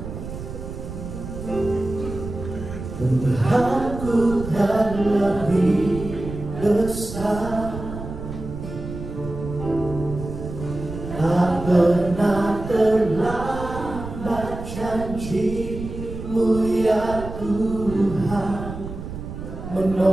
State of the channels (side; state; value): right; noise; rumble, 9 dB below the sound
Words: Tuhanku terlebih besar. Tak pernah terlambat janji-Mu ya Tuhan,